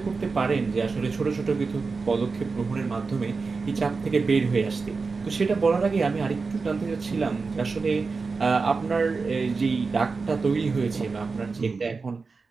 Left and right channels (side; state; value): left; quieter; 4.4 dB